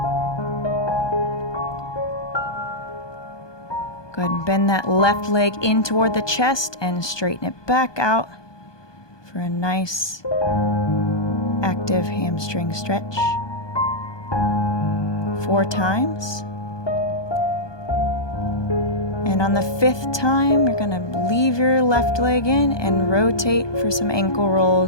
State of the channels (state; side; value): late; right; 1.2 ms